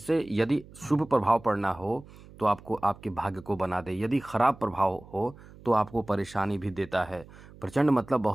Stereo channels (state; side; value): noise; right; hum, 20 dB below the sound